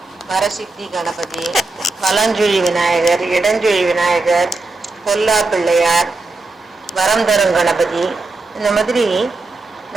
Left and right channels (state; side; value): quieter; left; 3.4 dB